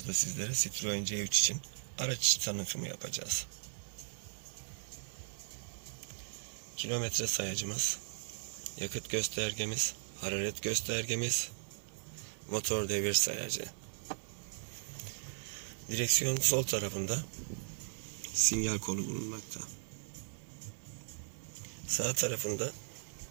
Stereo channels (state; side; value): silent; left; 53 dB below the other